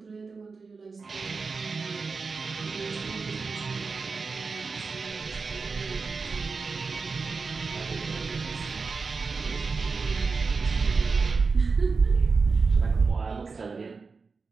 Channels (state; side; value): quieter; left; 4.6 dB